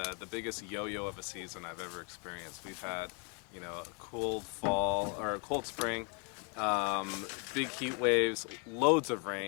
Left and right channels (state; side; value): quieter; right; 36.5 dB